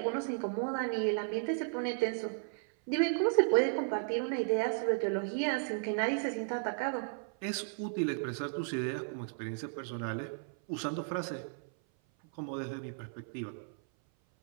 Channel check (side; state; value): left; silent; 55 dB below the other